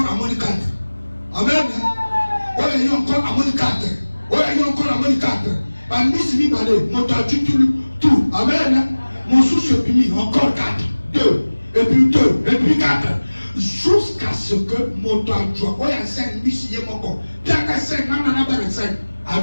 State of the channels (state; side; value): inverted; both; correlation -1.00